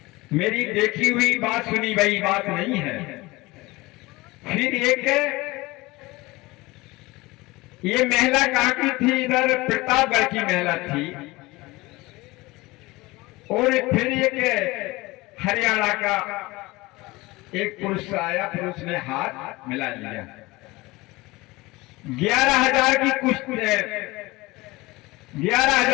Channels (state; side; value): quieter; right; 21.5 dB